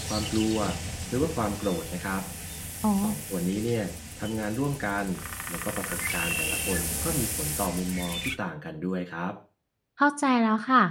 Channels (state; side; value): identical; both; correlation 1.00